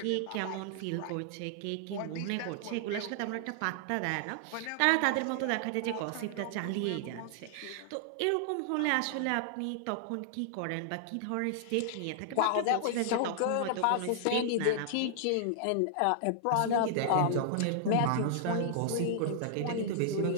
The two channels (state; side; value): different; both; correlation -0.01